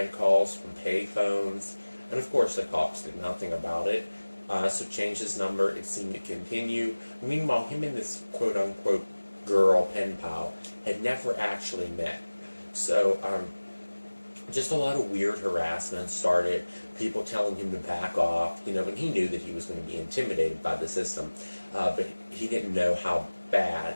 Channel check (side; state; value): both; inverted; correlation -1.00